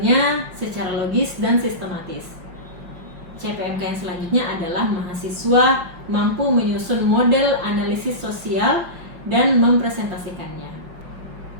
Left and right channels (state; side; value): late; left; 5.8 ms